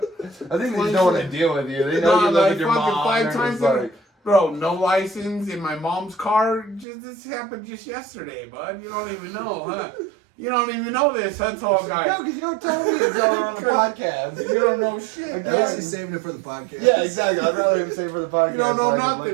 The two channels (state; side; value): drops out; left; at 6.9 s